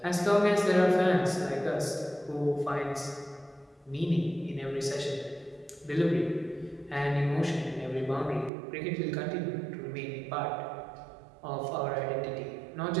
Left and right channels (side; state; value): left; drops out; at 8.5 s